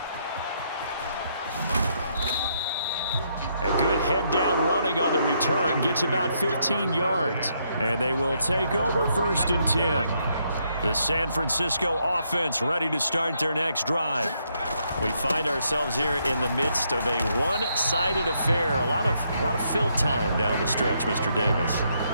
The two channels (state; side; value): inverted; both; correlation -0.75